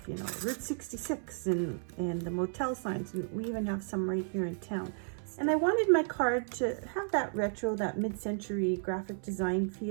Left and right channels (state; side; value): silent; left; 56 dB below the other